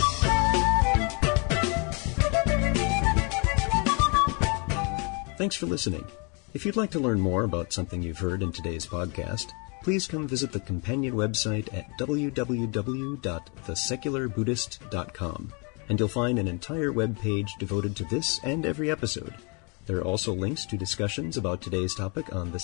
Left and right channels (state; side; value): quieter; right; 33.1 dB